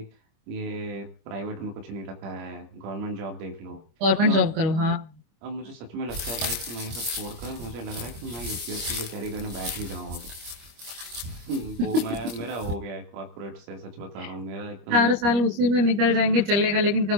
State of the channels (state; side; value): late; left; 25 ms